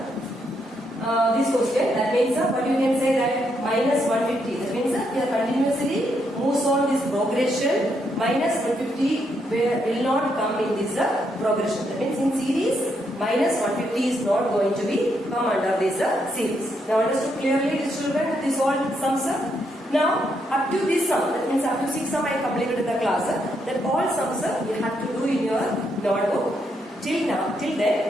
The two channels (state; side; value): normal; both; correlation 0.77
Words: question. That means what you can say that minus 150. That means here continuously moves on this progression. Minus 150 will not come in this progression. That means in series minus 150 is not going to be come under this series. Now understood clearly, children, this all sums up. Now up to this sum, that means up to 6 sum I completed in the class. That all sums you have to do in your notebook. Till